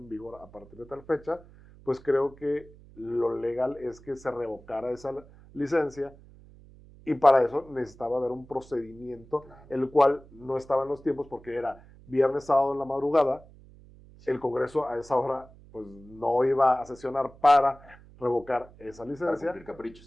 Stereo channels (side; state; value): right; noise; hum, 23 dB below the sound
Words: vigor a partir de tal fecha, pues creo que lo legal es que se revocara esa licencia y para eso necesitaba haber un procedimiento, el cual no estaba en los tiempos porque era viernes, sábado en la madrugada, el Congreso a esa hora pues no iba a sesionar para revocar esa licencia. Para cumplir